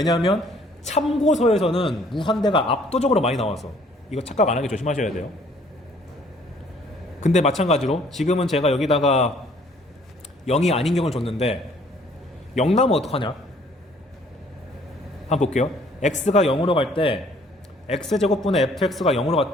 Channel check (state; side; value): normal; both; correlation 0.59